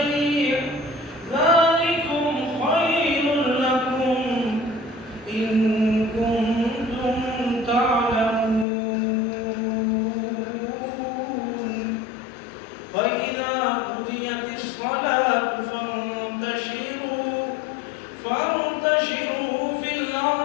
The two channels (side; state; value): right; drops out; at 8.7 s